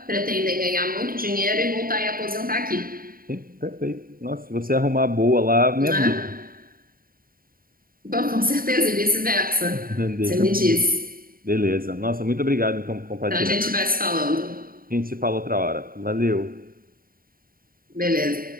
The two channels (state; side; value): late; left; 0.42 ms